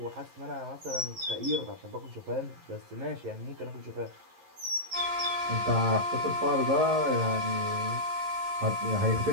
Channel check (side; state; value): left; late; 11 ms